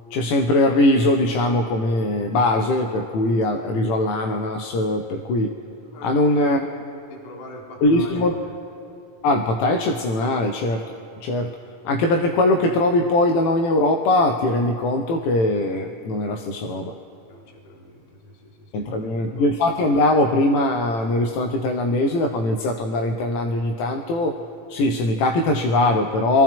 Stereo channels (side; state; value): right; late; 18 ms